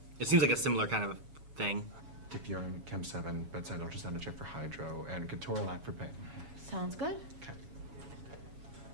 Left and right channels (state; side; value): late; left; 7.2 ms